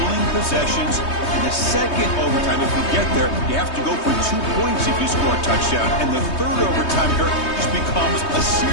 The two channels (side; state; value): right; late; 3.2 ms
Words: possessions. In the second overtime, if we get there, you have to go for 2 points if you score a touchdown. And the third overtime here just becomes a